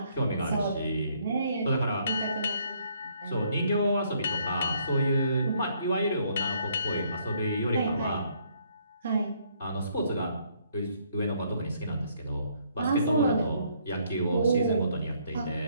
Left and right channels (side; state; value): both; inverted; correlation -0.68